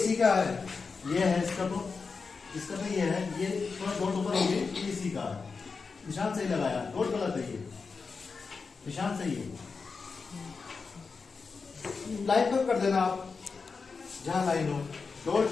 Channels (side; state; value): right; quieter; 4.8 dB